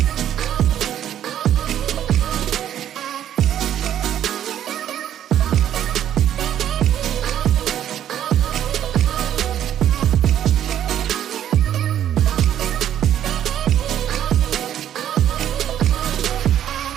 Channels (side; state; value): left; quieter; 10.8 dB